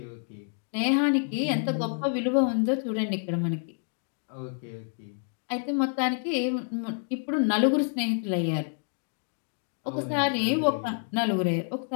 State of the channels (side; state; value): right; silent; 59 dB below the other